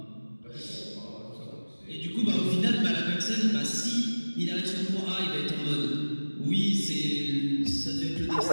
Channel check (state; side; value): inverted; both; correlation -1.00